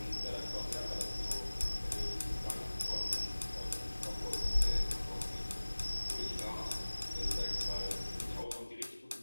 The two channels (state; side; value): inverted; both; correlation -1.00